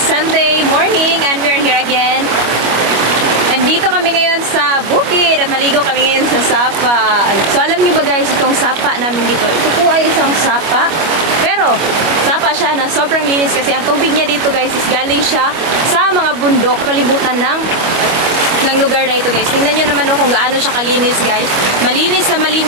Sunday morning and we're here again. Nandito kami ngayon sa bukid at maligo kami ngayon sa sapa. So alam niyo ba guys, itong sapa namin dito, ito po ay isang sapa. Pero sapa siya na sobrang linis kasi ang tubig niya dito guys is galing siya sa mga bundok, palibutan ng lugar na ito guys. Tingnan nyo naman kung gaano siya kalinis guys. Malinis na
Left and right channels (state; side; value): late; left; 25 ms